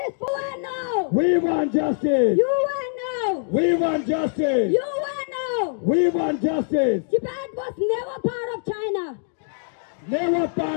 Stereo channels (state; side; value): silent; right; digital silence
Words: for no! We want justice. You want no! We want justice. You want no! We want justice. Tibet was never part of China. Never